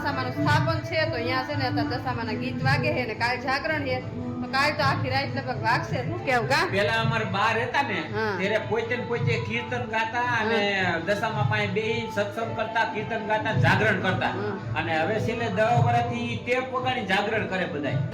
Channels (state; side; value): identical; both; correlation 1.00